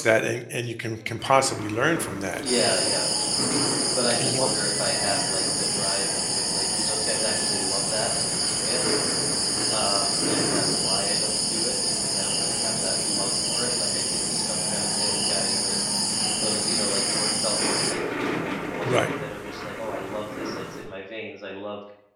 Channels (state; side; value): identical; both; correlation 1.00